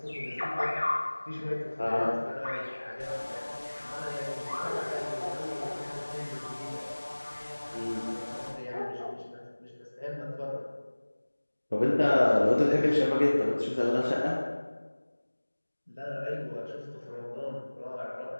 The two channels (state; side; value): inverted; both; correlation -1.00